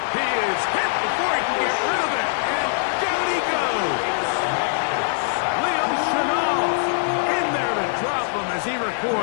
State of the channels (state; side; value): silent; right; 64 dB below the other